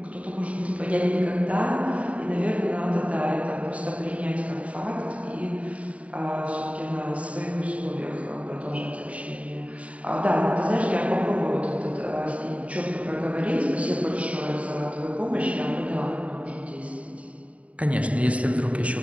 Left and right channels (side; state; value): left; late; 0.066 ms